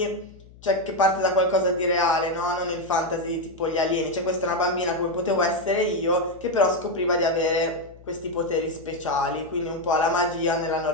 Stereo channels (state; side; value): noise; left; hum, 22 dB below the sound